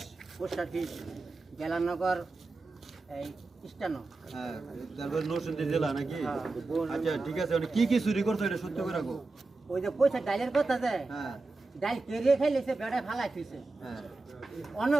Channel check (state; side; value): quieter; left; 3.4 dB